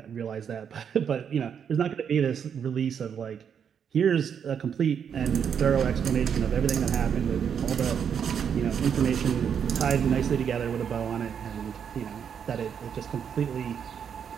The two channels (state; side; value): quieter; left; 7.7 dB